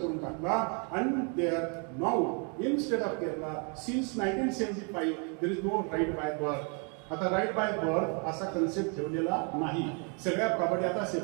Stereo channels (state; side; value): quieter; left; 37.6 dB